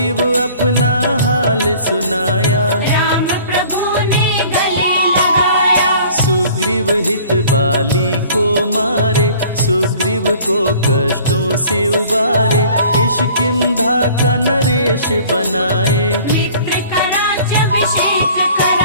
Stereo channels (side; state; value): both; inverted; correlation -0.50